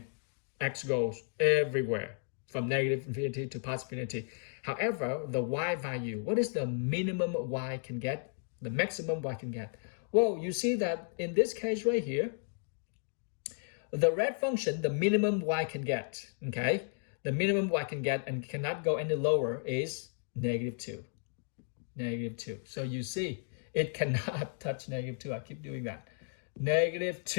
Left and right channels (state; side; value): silent; right; 55 dB below the other